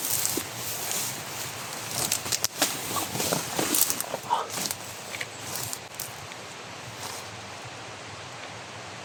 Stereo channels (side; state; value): both; identical; correlation 1.00